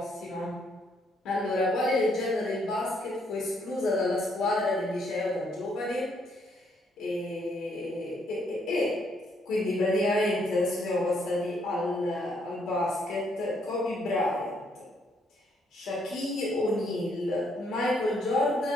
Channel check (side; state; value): both; normal; correlation 0.71